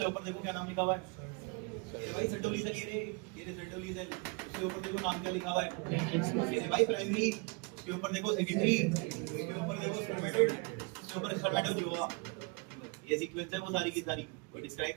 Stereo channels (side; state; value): left; quieter; 29.8 dB